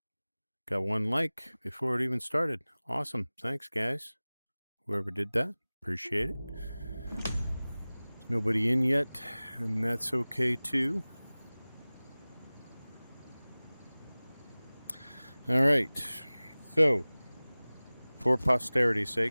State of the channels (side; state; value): both; inverted; correlation -0.99